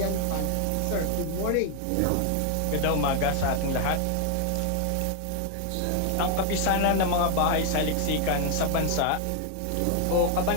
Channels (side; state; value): both; different; correlation 0.00